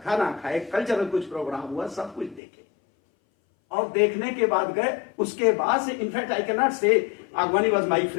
खाना खाए, कल्चरल कुछ प्रोग्राम हुआ, सब कुछ देखे। और देखने के बाद गए। उसके बाद से in fact I can not say Agwani was my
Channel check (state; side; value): drops out; right; at 2.4 s